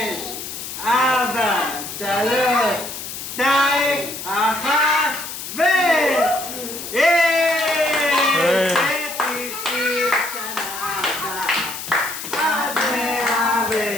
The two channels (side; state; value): left; noise; hiss, 8 dB below the sound